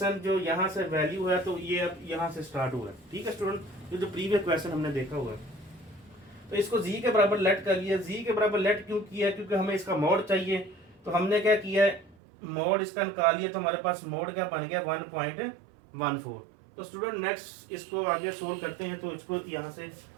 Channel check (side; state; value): left; drops out; at 12.2 s